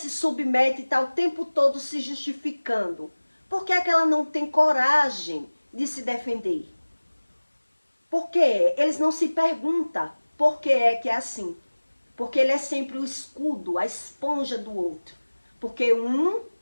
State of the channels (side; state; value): both; inverted; correlation -1.00